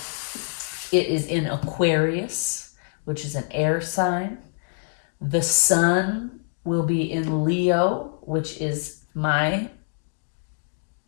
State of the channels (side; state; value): right; silent; digital silence